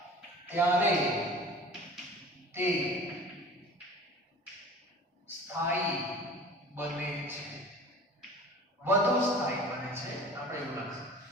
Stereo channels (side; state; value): both; normal; correlation 0.42